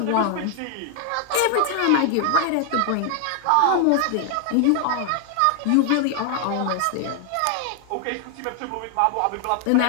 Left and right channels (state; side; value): different; both; correlation 0.00